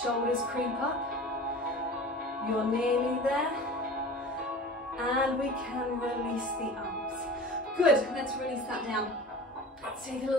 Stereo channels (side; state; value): both; normal; correlation 0.37